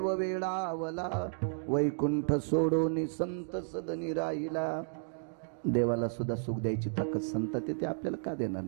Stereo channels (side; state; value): left; silent; digital silence